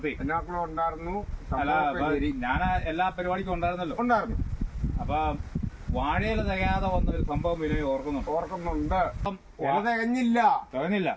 എന്നാക്കളും ഉണ്ടായിരുന്നു. ഞാൻ എല്ലാ പരിപാടിക്കും ഉണ്ടായിരുന്നു. അപ്പൊ വാഴയില തികയാതെ വന്നൊരു സംഭവം ബിനോയ് ഓർക്കുന്നുണ്ട്. ഇല തികഞ്ഞില്ല.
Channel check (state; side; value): identical; both; correlation 1.00